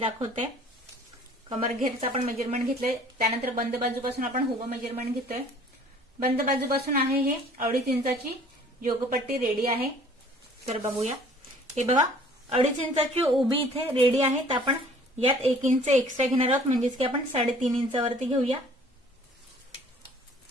कमरघेरचं आपण मेजरमेंट घेतलंय. त्यानंतर बंद बाजूपासून आपण उभं मेजरमेंट घेतोय. बंद बाजूपासून आहे हे 2.5 इंचाची योगपट्टी रेडी आहे. तर बघूया. हे बघा 2.5 इंचाची उभी इथे रेडी आहे. तर आपण यात 1 इंच एक्स्ट्रा घेणार आहोत, म्हणजेच की आपण 3.5 इंचावरती घेऊया.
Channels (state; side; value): normal; both; correlation 0.53